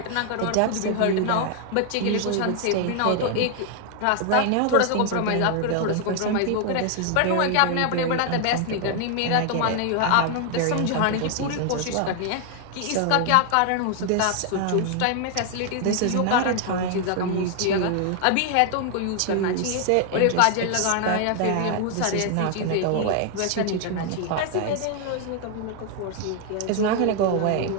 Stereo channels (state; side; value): different; both; correlation 0.00